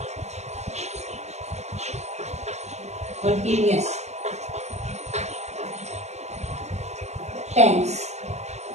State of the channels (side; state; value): left; late; 0.33 ms